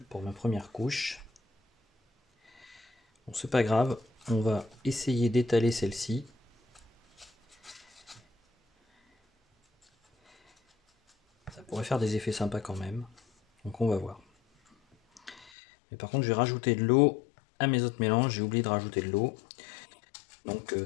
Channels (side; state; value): right; drops out; at 15.5 s